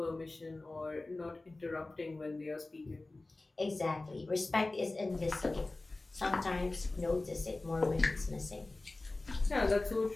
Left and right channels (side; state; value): right; quieter; 3.1 dB